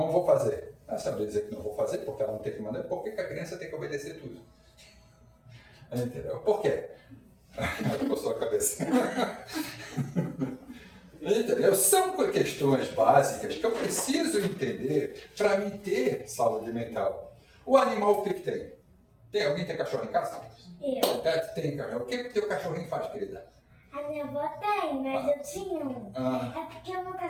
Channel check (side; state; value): both; identical; correlation 1.00